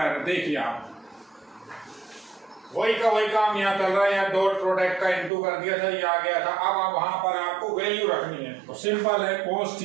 देखिए आप वही का वही काम यहाँ चल रहा है, यहाँ डॉट प्रोडक्ट का इनटू कर दिया था, ये आ गया था। अब वहां पर आपको वैल्यू रखनी है, तो सिंपल है, cos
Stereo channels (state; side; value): drops out; left; at 5.3 s